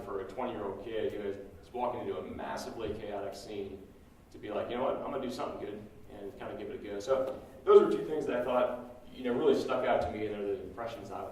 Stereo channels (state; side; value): identical; both; correlation 1.00